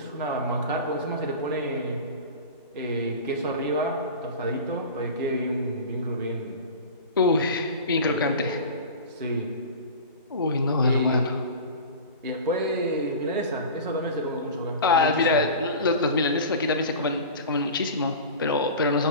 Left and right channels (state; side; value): inverted; both; correlation -0.34